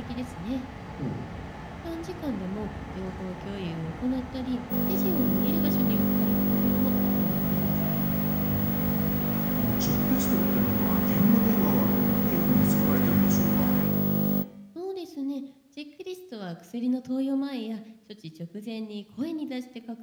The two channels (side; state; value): both; identical; correlation 1.00